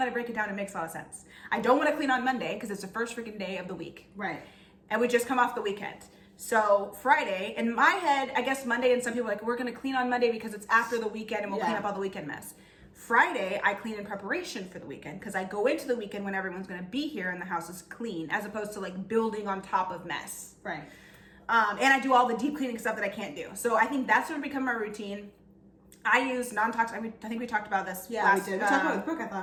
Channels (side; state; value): both; identical; correlation 1.00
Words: I break it down, it makes a lot of sense. I don't want to clean on Monday because it's the first freaking day of the week. Right. And we just come off the weekend. So Friday, in my head, I guess Monday, and some people are like, we're going to clean on Monday because it's after the weekend and we'll clean up all the weekend mess. Friday, I clean in preparation for the weekend because I go into the weekend when everyone's going to be here and the house is clean, as opposed to like building on top of mess. Right. And I do all the deep cleaning stuff that I can't do. So I think that's going to become my routine. I use non-toxic. I think we talked about this. Yeah, we did. We talked about it with Brooke, I